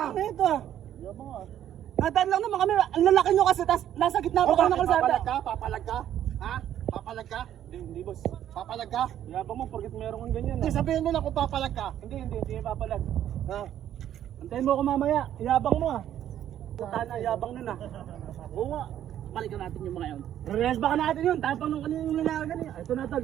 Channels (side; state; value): left; quieter; 11.1 dB